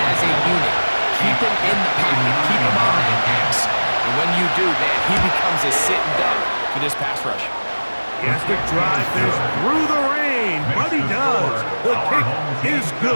as a unit. Keep him in the pocket. Keep him on that X. And when you do, man, he becomes a sit and duck for this pass rush. He has to drive this through the rain, but he does. The kick is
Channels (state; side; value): inverted; both; correlation -1.00